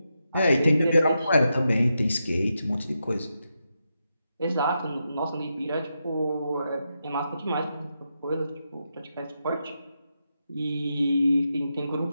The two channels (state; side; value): inverted; both; correlation -0.86